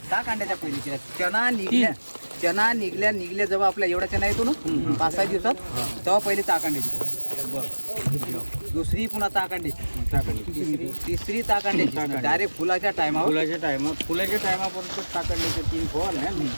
6 कांड्याच्या पहिले केल्या चना निघल्या जेव्हा आपल्या एवढा चना येतो ना 5-6 दिवसात तेव्हा पहिले 6 कांड्याची दुसरी पुन्हा 6 कांड्याची तिसरी 6 कांड्याची डायरेक्ट फुलाच्या फुलाच्या टायमापर्यंत टाकायचे 3 फॉल आहे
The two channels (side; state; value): both; inverted; correlation -1.00